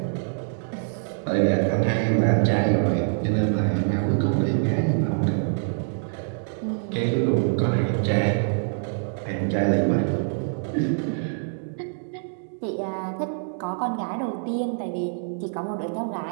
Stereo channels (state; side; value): silent; left; digital silence